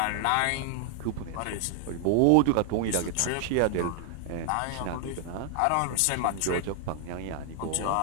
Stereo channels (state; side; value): different; both; correlation 0.00